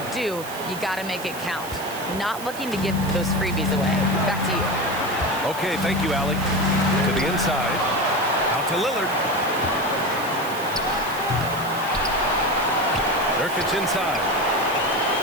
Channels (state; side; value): noise; right; hiss, 14 dB below the sound